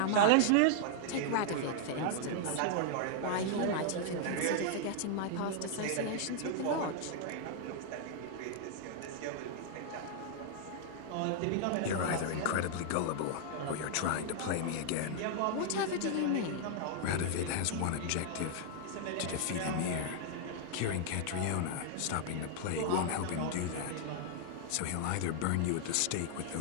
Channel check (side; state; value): both; different; correlation -0.01